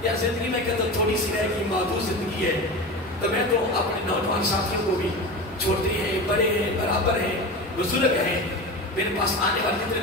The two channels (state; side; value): normal; both; correlation 0.28